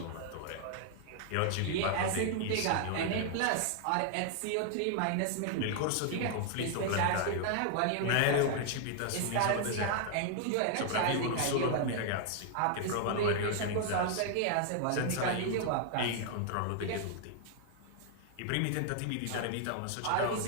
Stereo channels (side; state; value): both; different; correlation 0.00